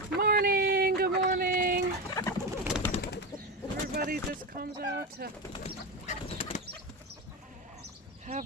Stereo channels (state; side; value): normal; both; correlation 0.17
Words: Morning, good morning. Everybody just comes out to have